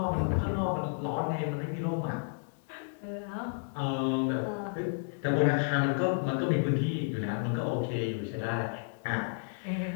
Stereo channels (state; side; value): silent; right; digital silence